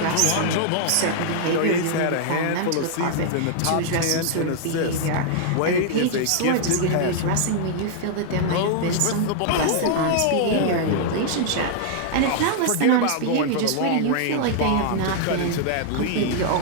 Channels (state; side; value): different; both; correlation -0.01